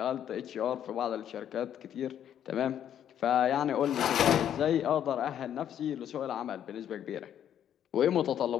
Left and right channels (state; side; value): quieter; right; 9.9 dB